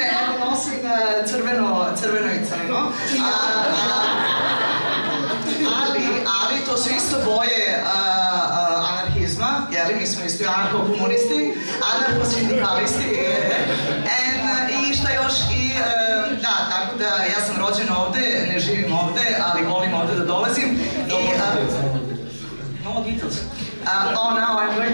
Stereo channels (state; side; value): inverted; both; correlation -1.00